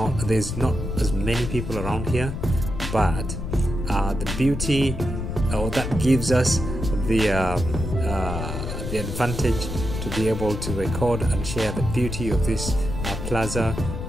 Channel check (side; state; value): left; noise; rumble, 5 dB below the sound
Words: There's not as many people around here, but the beauty, or that gives us the advantage to be able to record and share the beauty of this plaza